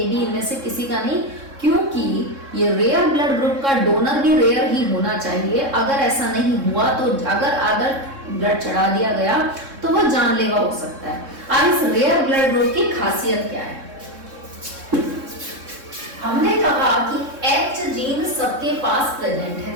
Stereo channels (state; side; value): late; left; 3.7 ms